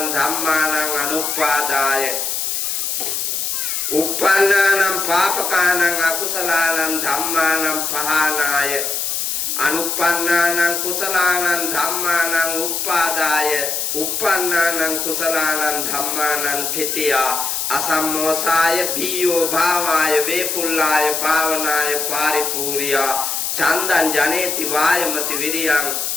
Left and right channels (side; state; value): left; noise; hiss, 1 dB below the sound